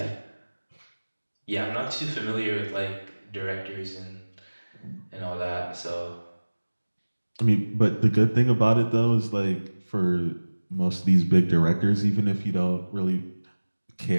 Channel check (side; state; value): both; inverted; correlation -1.00